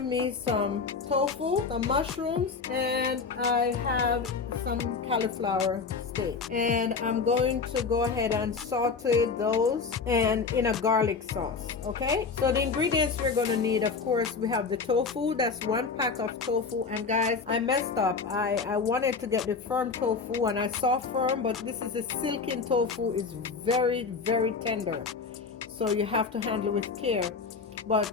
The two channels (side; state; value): right; quieter; 4.9 dB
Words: me some tofu, some mushrooms, and I have some cauliflower steak. And I'm going to go ahead and saute those and in a garlic sauce. Okay, so the ingredients we're going to need, of course, we have the tofu. That's 1 pack of tofu. And guys, I messed up. I wanted to get the firm tofu and I saw firm, but this is a silken tofu. It's very, very tender, so you have to handle it with care. But